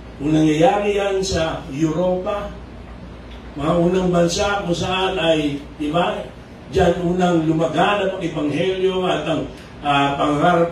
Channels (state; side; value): identical; both; correlation 1.00